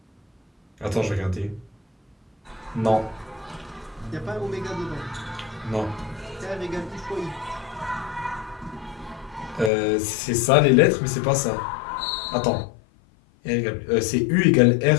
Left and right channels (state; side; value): drops out; right; at 9.7 s